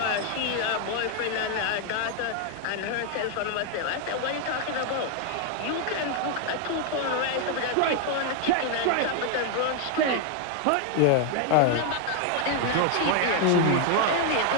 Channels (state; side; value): different; both; correlation 0.00